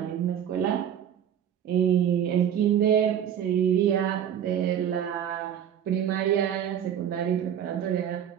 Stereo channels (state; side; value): quieter; left; 9.5 dB